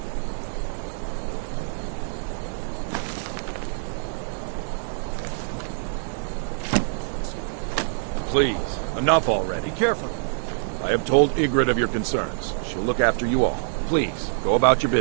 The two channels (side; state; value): left; silent; 62 dB below the other